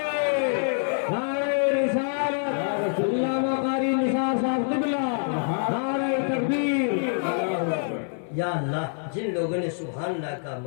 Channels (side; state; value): right; silent; digital silence